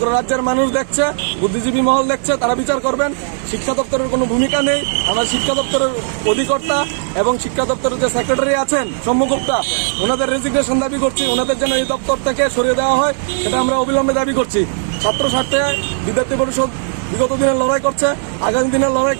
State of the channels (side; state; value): left; silent; 61 dB below the other